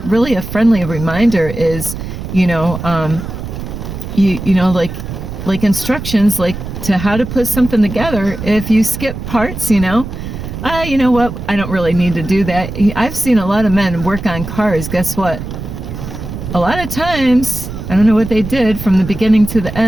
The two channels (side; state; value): right; noise; rumble, 8 dB below the sound